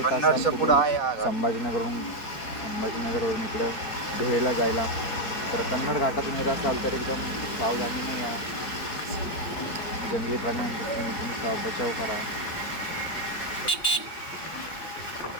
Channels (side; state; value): right; late; 4.4 ms